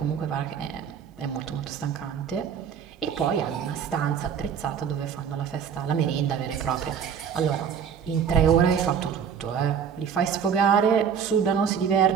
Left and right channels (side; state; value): left; quieter; 7.5 dB